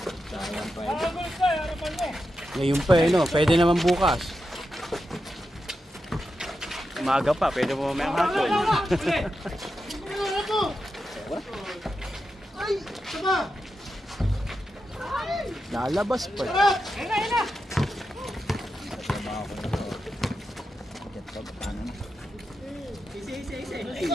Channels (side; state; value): both; normal; correlation 0.89